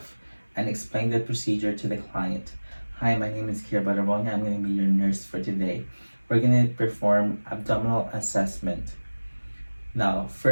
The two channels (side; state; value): both; inverted; correlation -1.00